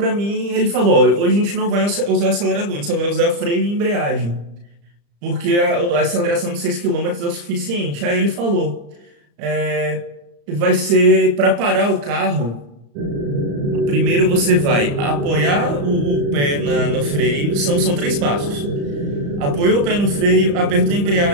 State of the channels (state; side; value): late; left; 35 ms